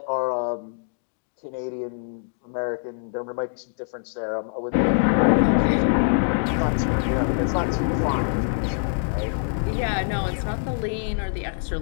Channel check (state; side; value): silent; right; digital silence